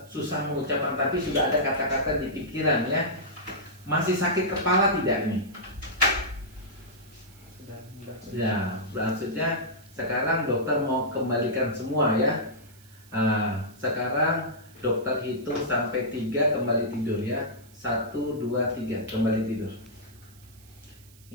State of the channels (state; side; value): noise; right; hiss, 25 dB below the sound